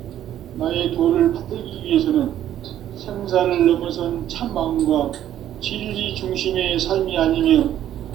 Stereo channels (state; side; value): quieter; left; 11.5 dB